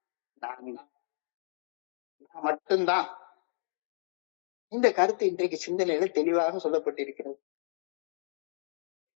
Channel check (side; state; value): right; silent; digital silence